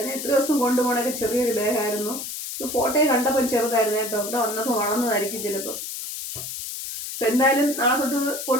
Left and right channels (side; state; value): left; noise; hiss, 7 dB below the sound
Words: ഞാൻ എത്ര ദിവസം കൊണ്ടുപോകണൊക്കെ ചെറിയൊരു ബാഗായിരുന്നു. ഇത് ഫോട്ടോയിൽ കണ്ടപ്പോൾ ചെറുതായിരുന്നു കേട്ടോ. ഇവിടെ വന്നപ്പോൾ വളർന്നതായിരിക്കും ചിലപ്പോൾ. അപ്പം എന്തായാലും നാളെ തൊട്ട്